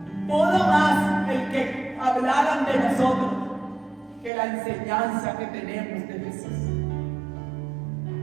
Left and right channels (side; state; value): left; drops out; at 4.3 s